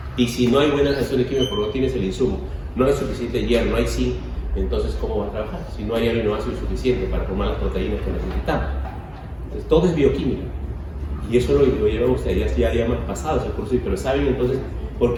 Y si no hay buenas reacciones químicas, porque no tienes el insumo, no hay suficiente hierro, no hay zinc, entonces ¿cómo va a trabajar? Si no hay aminoácidos suficientes para formar las proteínas que necesitamos. Entonces todo es bioquímica. Y eso lo llevan ustedes, ya hemos pasado ese curso, pero saben entonces por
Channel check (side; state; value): both; identical; correlation 1.00